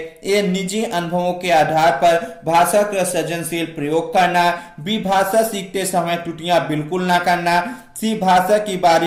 ए निजी अनुभवों के आधार पर भाषा का सृजनशील प्रयोग करना, बी भाषा सीखते समय त्रुटियां बिल्कुल ना करना, सी भाषा की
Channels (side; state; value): both; identical; correlation 1.00